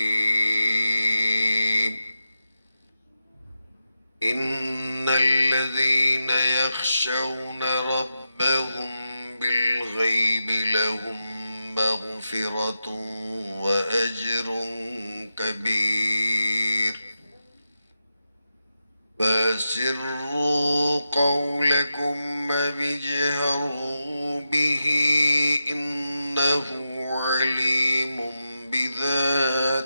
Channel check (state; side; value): inverted; both; correlation -0.90